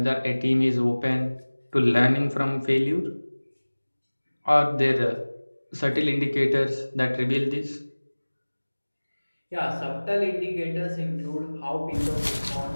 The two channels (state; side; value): inverted; both; correlation -1.00